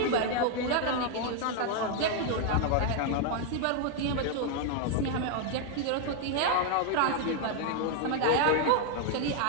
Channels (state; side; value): different; both; correlation 0.00